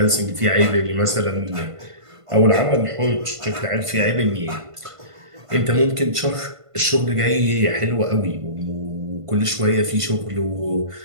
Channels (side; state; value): left; late; 1.5 ms